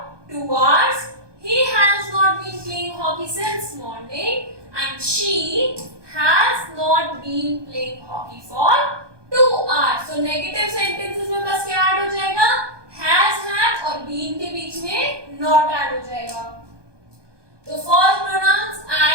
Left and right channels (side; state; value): left; late; 1.2 ms